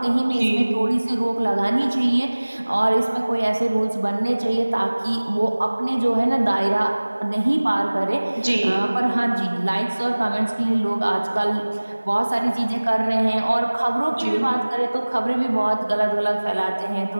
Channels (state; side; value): inverted; both; correlation -1.00